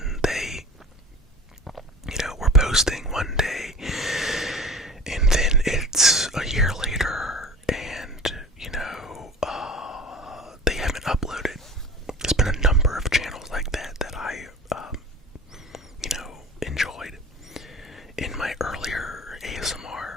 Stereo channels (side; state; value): both; normal; correlation 0.39